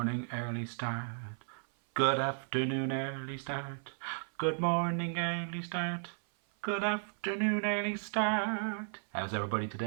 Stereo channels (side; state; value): left; silent; 55 dB below the other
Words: early start. Good afternoon, early start. Good morning, early start. Good afternoon, early start. How's everybody